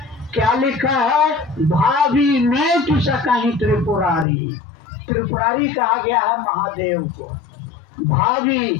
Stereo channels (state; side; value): drops out; right; at 4.2 s